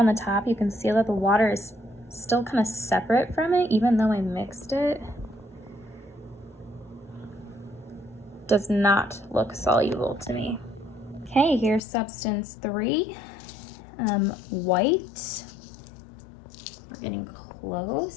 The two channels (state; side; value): drops out; right; at 11.8 s